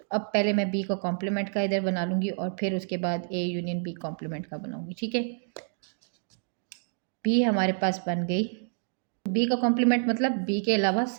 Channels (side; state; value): left; silent; digital silence